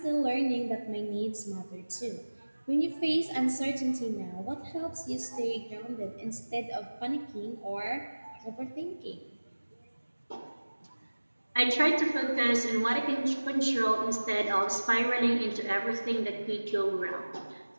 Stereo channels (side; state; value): both; inverted; correlation -1.00